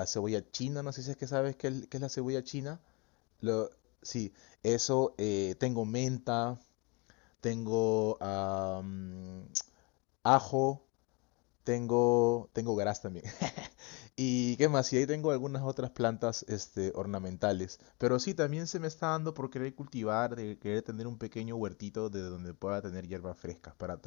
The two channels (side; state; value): right; quieter; 29.3 dB